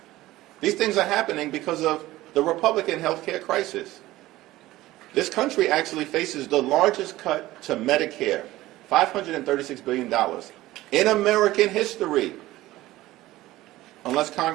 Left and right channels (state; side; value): quieter; left; 16.9 dB